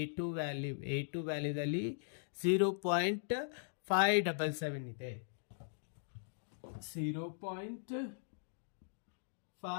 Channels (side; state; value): right; silent; digital silence